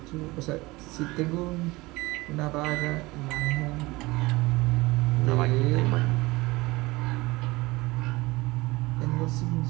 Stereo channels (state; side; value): quieter; left; 21.5 dB